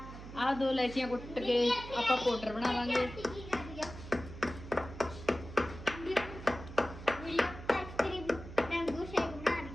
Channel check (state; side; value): noise; right; hum, 13 dB below the sound